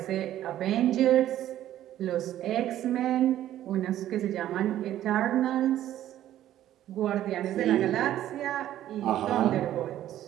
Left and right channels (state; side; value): quieter; left; 12.5 dB